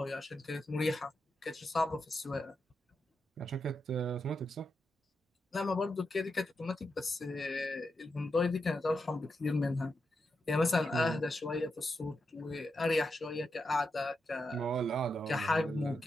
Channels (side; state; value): both; normal; correlation 0.86